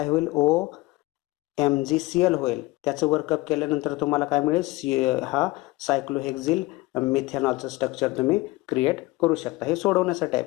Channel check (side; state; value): right; quieter; 21.0 dB